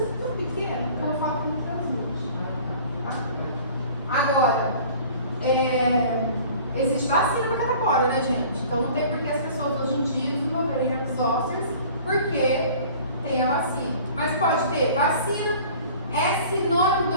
é tão pequeno que eu falo que não transmite. Tá? Agora, existe vacina para catapora, né, gente? Então não tem por que as pessoas hoje em dia desenvolverem herpes zoster, porque tem a vacina. Mas pode ter vacina, é sinônimo de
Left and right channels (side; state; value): both; inverted; correlation -0.47